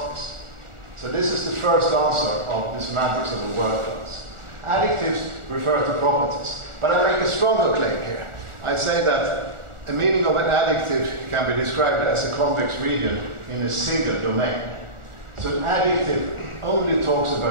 So this is the first answer of the semantics of a word class. Adjectives refer to properties. But I make a stronger claim here. I say that a meaning of an adjective can be described as a convex region in a single domain. So an adjective only talks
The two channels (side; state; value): left; late; 1.4 ms